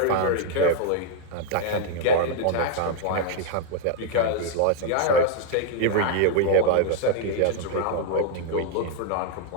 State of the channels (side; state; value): both; different; correlation 0.00